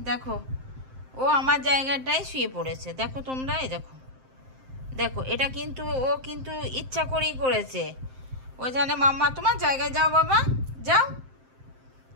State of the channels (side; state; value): left; late; 7.6 ms